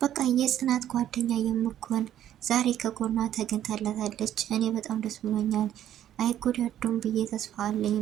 በቃ የጽናት ጓደኛ የምትሆን ዛሬ ከጎኗ ተገኝታላታለች። እኔ በጣም ደስ ብሎኛል። አይጎዳዱም ብዬ ተስፋ አለኝ።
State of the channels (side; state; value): left; quieter; 11.3 dB